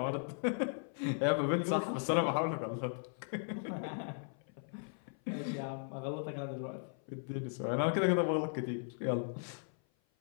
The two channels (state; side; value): silent; right; 53 dB below the other